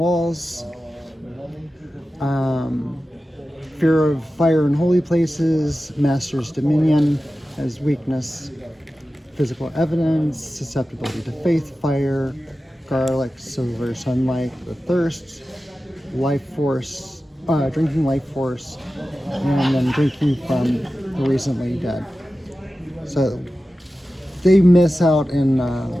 Fear of fire in holy places. Master's dominion as weakness. Physical evidence. Susceptibility to faith, fire, garlic, silver, sunlight, the thirst, life force, drinking life force, and then drinking from the recently dead. So they miss out in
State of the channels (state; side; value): normal; both; correlation 0.94